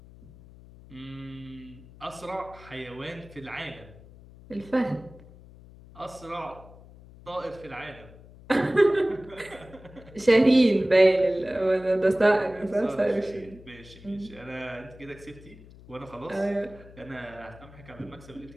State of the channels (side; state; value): left; noise; hum, 21 dB below the sound